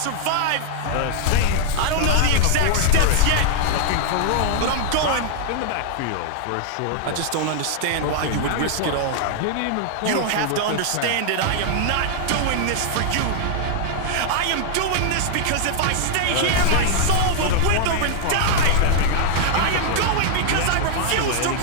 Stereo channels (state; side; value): different; both; correlation -0.01